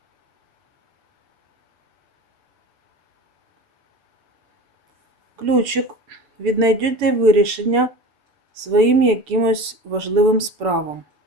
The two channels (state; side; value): late; left; 7.0 ms